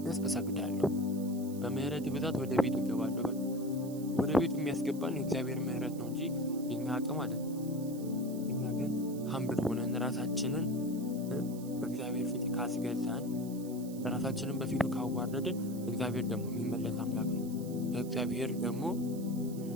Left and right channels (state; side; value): noise; right; hiss, 18 dB below the sound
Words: እሰግዳለሁ። በምህረት ብዛት ወደ ቤት እገባለሁ። ወደ ቤቱ የሚያስገባን የእግዚአብሔር ምህረት ነው እንጂ የኛ አቅም አይደለም። እኛ ግን ሀምብል ሆነን ራሳችንን በእግዚአብሔር ፊት ካስገዛን፣ ራሳችንን በፊቱ ካዋረድን እግዚአብሔር ደግሞ የሚመለስ አምላክ ነው። እግዚአብሔር